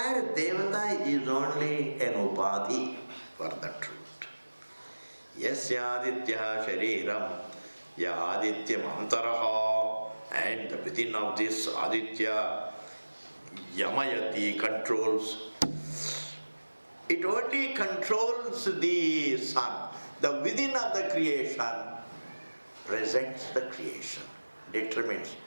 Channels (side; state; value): both; inverted; correlation -1.00